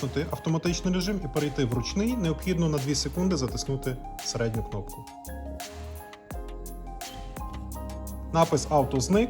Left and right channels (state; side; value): identical; both; correlation 1.00